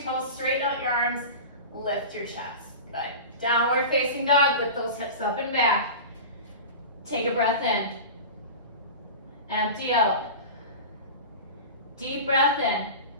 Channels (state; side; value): inverted; both; correlation -0.30